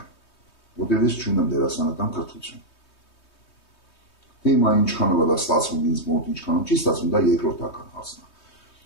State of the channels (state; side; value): late; right; 3.2 ms